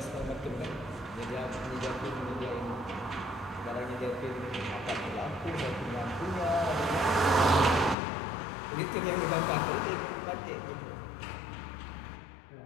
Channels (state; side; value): drops out; right; at 8.0 s